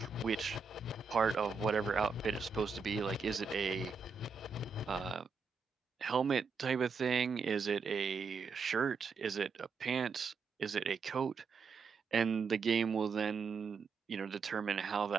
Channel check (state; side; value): quieter; left; 5.1 dB